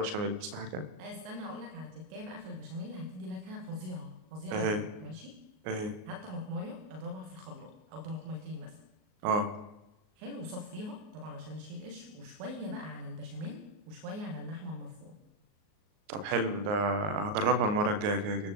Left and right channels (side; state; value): left; late; 38 ms